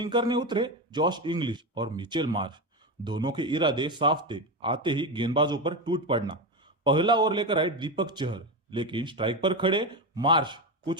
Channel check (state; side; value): normal; both; correlation 0.16